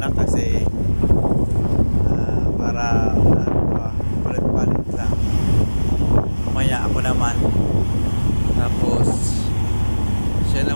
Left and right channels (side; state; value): both; inverted; correlation -1.00